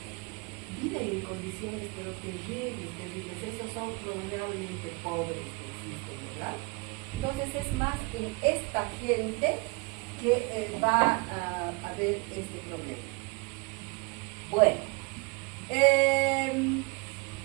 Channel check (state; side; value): quieter; left; 27.6 dB